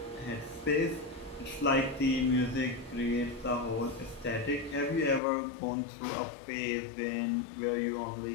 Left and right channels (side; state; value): right; drops out; at 5.2 s